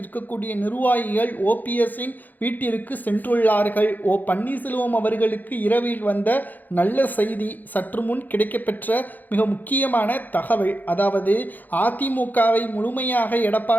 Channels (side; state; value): right; late; 0.084 ms